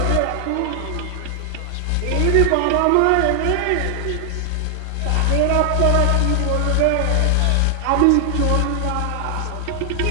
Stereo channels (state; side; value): different; both; correlation 0.00